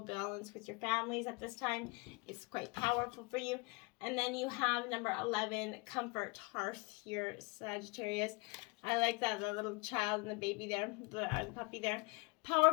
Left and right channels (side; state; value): right; quieter; 28.0 dB